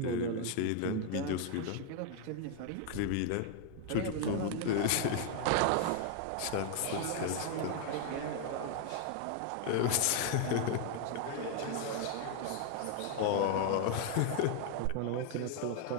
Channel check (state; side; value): different; both; correlation 0.00